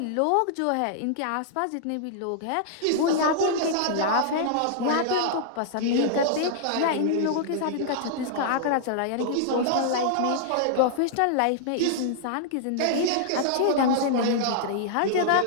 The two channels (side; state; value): both; different; correlation -0.01